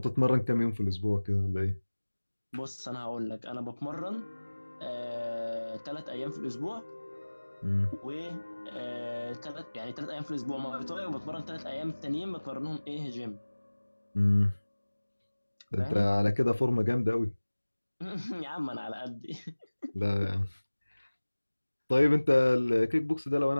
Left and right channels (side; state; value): both; inverted; correlation -1.00